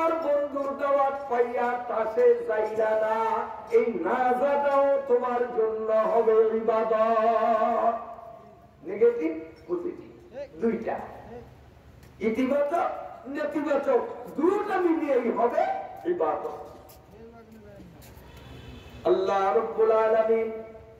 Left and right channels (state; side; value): identical; both; correlation 1.00